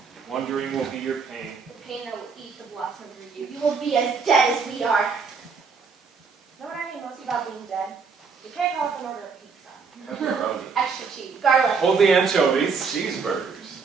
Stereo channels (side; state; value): left; quieter; 5.2 dB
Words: wondering will be your pain. The pain that will eat the blossom through you. You will be as dead as we are. Know what I hate most about being dead? You can't go off and order a pizza. Pepperoni. Extra cheese, garlic, Hold the anchovies. Cheeseburgers.